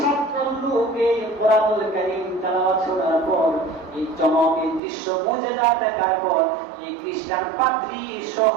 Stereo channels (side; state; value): left; drops out; at 4.8 s